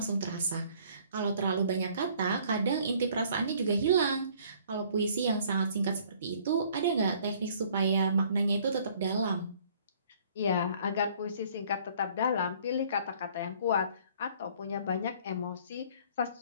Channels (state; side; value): inverted; both; correlation -0.57